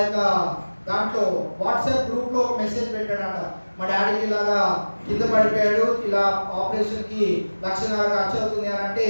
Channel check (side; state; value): both; inverted; correlation -1.00